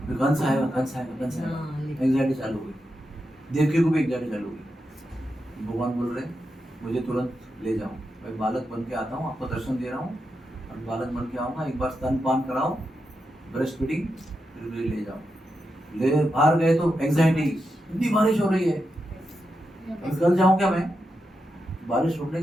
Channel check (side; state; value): both; normal; correlation 0.87